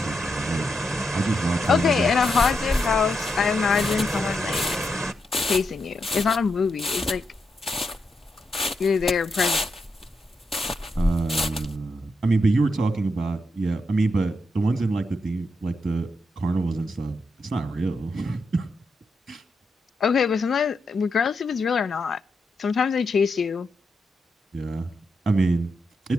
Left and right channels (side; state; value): both; normal; correlation 0.84